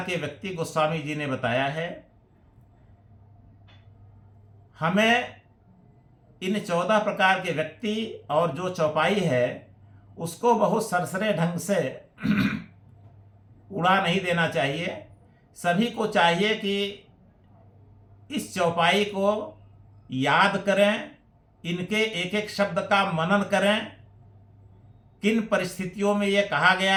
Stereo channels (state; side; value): identical; both; correlation 1.00